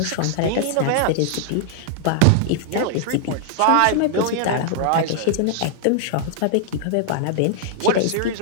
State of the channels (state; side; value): different; both; correlation 0.00